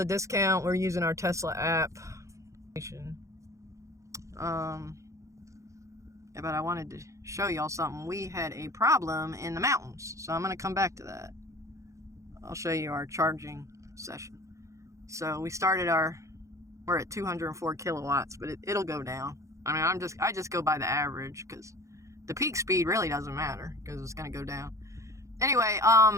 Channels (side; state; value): left; late; 0.15 ms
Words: discount. We're using our Tesla app. But I wanted to show y'all something. We had a problem in the mountains, so I'm going to come back to that. I'll show you our charging session. So we started we're at 204 kilowatts, but it'll go down. I mean, I just go by the average because the peak speed really doesn't matter because it's going to go down. Anyway,